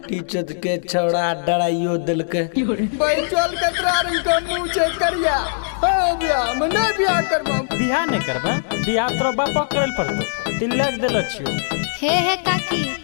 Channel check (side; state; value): right; silent; digital silence